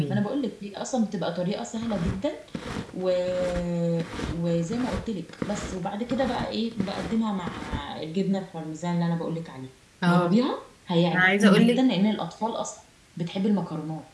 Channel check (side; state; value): both; identical; correlation 1.00